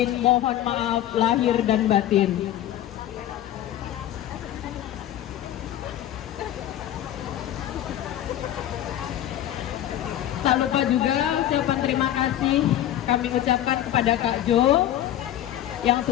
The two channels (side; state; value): right; quieter; 12.2 dB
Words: mohon maaf lahir dan batin. Tak lupa juga ucapan terima kasih kami ucapkan kepada Kak Jo yang